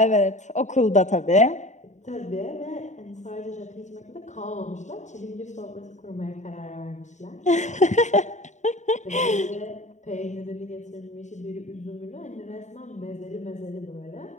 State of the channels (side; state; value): right; late; 0.34 ms